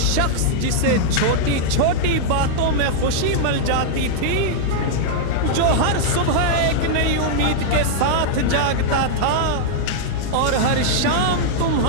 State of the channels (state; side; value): different; both; correlation -0.02